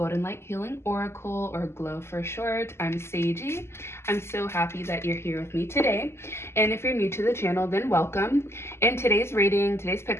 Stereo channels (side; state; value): right; late; 0.12 ms